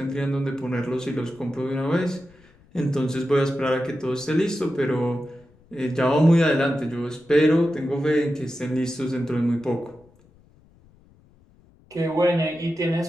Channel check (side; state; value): left; noise; rumble, 29 dB below the sound